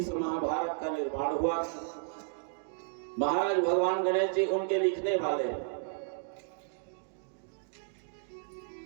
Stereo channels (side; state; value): left; silent; digital silence